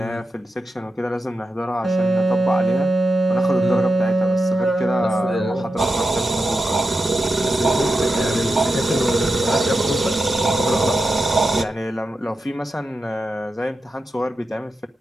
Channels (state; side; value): normal; both; correlation 0.89